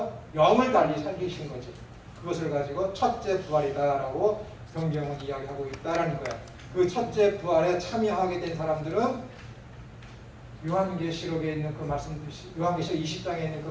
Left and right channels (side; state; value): both; identical; correlation 1.00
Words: 영을 달리 살리신 거지. 그것을 가지고 첫째 부활이다라고 성경은 이야기하고 있다라는 거예요. 그 첫째 부활에 참여하게 된 사람들은 요한계시록에 있는 그 말씀, 요한계시록 20장에 있는 그